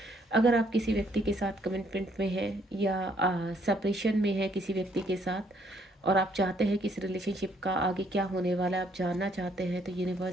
अगर आप किसी व्यक्ति के साथ कमिटमेंट में हैं या सेपरेशन में है किसी व्यक्ति के साथ, और आप चाहते हैं कि इस रिलेशनशिप का आगे क्या होने वाला है, आप जानना चाहते हैं, तो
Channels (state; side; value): normal; both; correlation 0.67